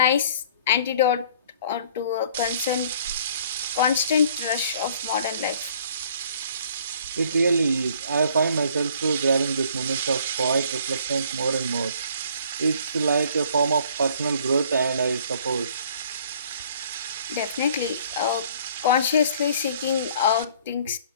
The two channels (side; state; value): both; inverted; correlation -0.56